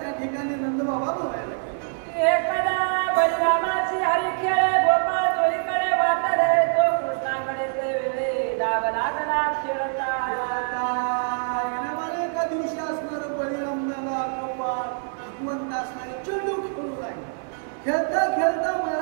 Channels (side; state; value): left; silent; 59 dB below the other